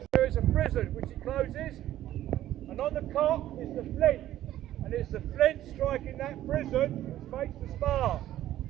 there is a prison which it closes, and on the cot is the flint, and it's the flint striking that prison which makes the spark.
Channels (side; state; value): left; quieter; 13.3 dB